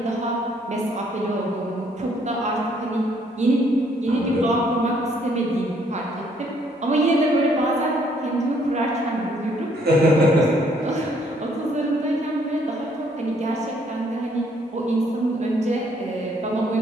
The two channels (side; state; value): both; normal; correlation 0.66